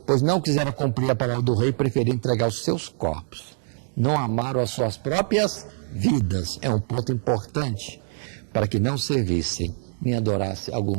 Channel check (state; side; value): silent; left; digital silence